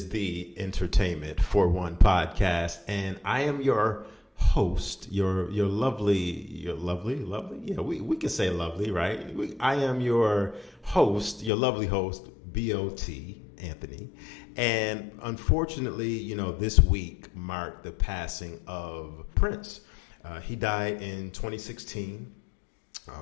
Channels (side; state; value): right; drops out; at 11.5 s